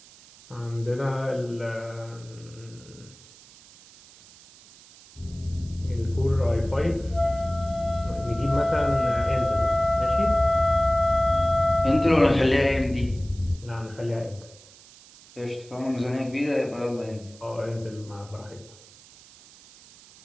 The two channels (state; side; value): noise; right; hiss, 23 dB below the sound